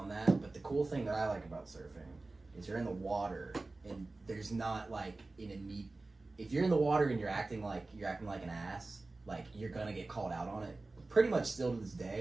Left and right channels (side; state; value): left; quieter; 3.3 dB